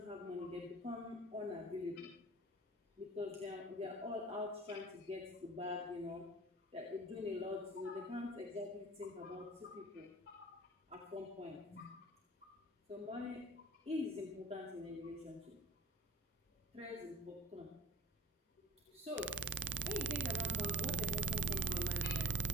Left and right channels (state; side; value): normal; both; correlation 0.40